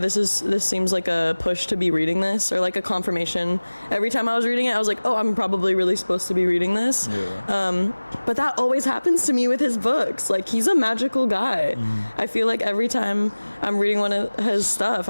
seems like a push to be reading this, or like a confirmation. Every time I was reading it, I was like, oh, I'm probably really supposed to be reading this. But that always happens to me with his books. Like, he's a magical guy. I feel like every time I'm reading one of his stuff,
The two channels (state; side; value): inverted; both; correlation -1.00